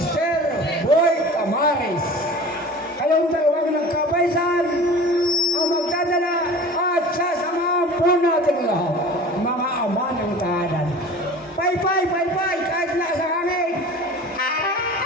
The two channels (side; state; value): both; normal; correlation 0.39